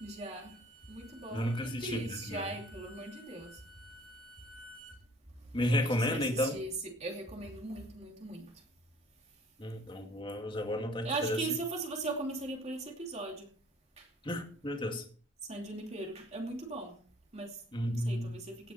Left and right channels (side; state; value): both; normal; correlation 0.55